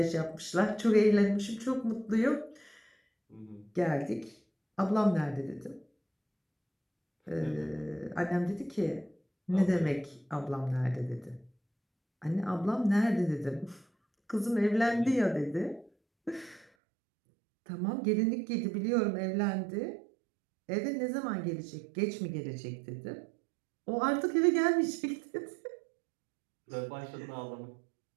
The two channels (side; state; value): left; drops out; at 16.7 s